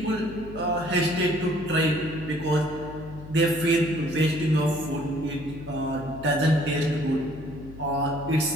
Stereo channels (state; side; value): noise; left; hum, 15 dB below the sound